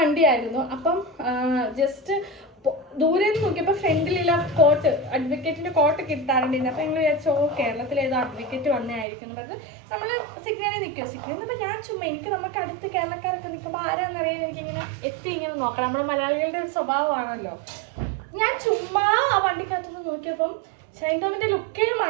വണ്ടിയായിരുന്നു. അപ്പം ജസ്റ്റ് ദൂരെ നിന്ന് നോക്കിയപ്പോൾ ഫ്രണ്ടിലുള്ള കോട്ട് അഡ്വക്കേറ്റിന്റെ കോട്ട് കിട്ടാറുണ്ടായിരുന്നു. അപ്പം ഞങ്ങൾ വിചാരിച്ചോ കേരളത്തിൽ ഏതോ അഡ്വക്കേറ്റ് വന്നതായിരിക്കും. നമ്മൾ സിഗ്നലിൽ നിൽക്കുക. സിഗ്നലിൽ നിന്നപ്പോൾ ഞാൻ ചുമ്മാ എനിക്ക് നമുക്ക് അടുത്ത് കേരളക്കാരൊക്കെ നിൽക്കുമ്പോൾ ആരാന്നറിയാൻ എനിക്കിങ്ങനെ ഇങ്ങനെ നോക്കണം. നമ്മുടെ മലയാളികളുടെ ഒരു സ്വഭാവമാണല്ലോ. ഞാൻ ചുമ്മാ ആ വണ്ടിക്കകത്തുനിന്ന് നോക്കിയപ്പം ഷൈൻ ടോമിന്റെ ലുക്കേ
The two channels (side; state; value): left; drops out; at 9.1 s